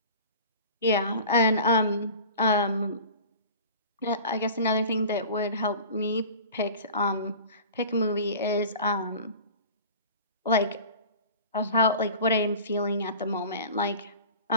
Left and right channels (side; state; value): both; inverted; correlation -0.39